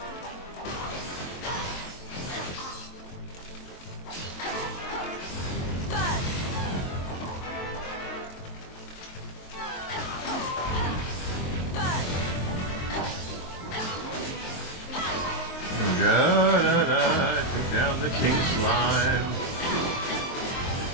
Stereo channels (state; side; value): late; right; 23 ms